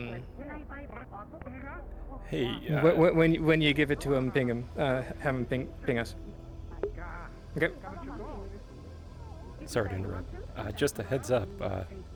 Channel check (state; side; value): identical; both; correlation 1.00